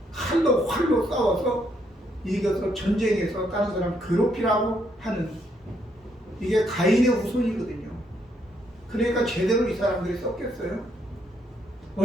칼로 활로 싸워서 이겨서 전쟁에서 다른 사람 괴롭히라고 하는 이게 가인의 후손이거든요. 그러니까 제대로 이 사람들이 썼겠어요.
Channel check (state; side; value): normal; both; correlation 0.73